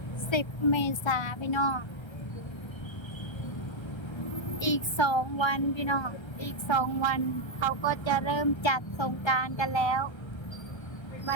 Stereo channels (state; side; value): late; right; 1.3 ms